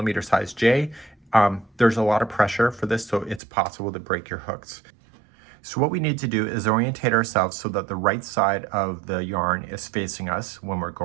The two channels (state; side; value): drops out; left; at 3.4 s